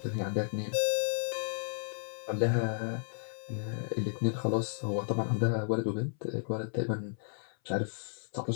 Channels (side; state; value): right; silent; 56 dB below the other